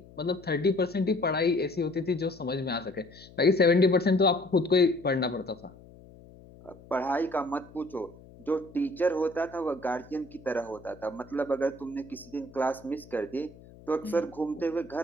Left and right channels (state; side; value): noise; left; hum, 21 dB below the sound